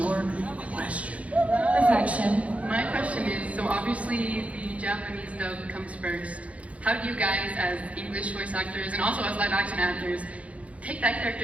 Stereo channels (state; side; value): late; left; 0.065 ms